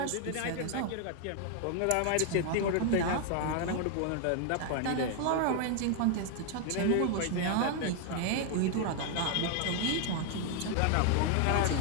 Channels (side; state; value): both; different; correlation 0.00